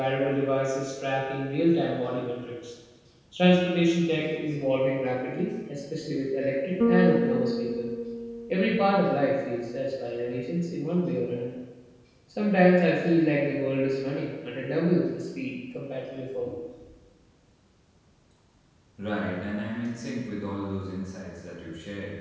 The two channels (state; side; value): identical; both; correlation 1.00